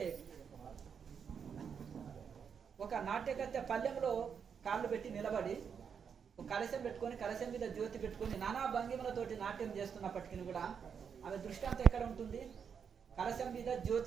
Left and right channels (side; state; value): left; quieter; 6.9 dB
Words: ఒక నాట్యకత్య పల్లెంలో కాళ్ళు పెట్టి నిలబడి కలశం పెట్టుకొని కలశం మీద జ్యోతి పెట్టుకొని నానా భంగిమలతోటి నాట్యం చేస్తున్నప్పటికీ కూడా ఆమె దృష్టి అంతా ఎక్కడ ఉంటుంది? కలశం మీద